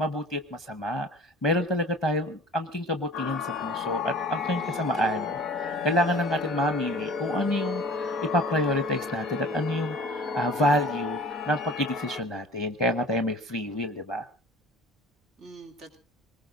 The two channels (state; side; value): normal; both; correlation 0.44